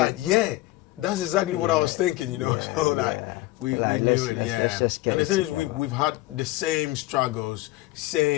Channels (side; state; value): right; quieter; 18.6 dB